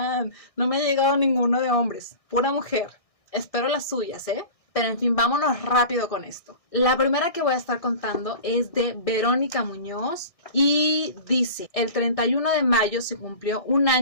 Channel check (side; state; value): right; late; 1.6 ms